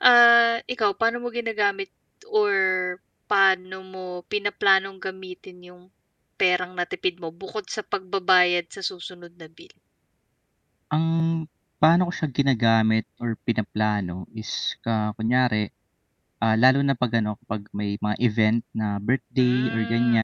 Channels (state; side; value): identical; both; correlation 1.00